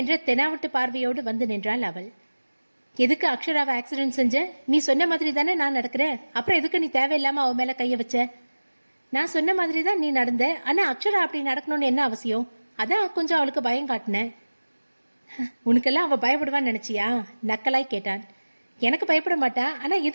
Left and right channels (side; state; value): both; inverted; correlation -1.00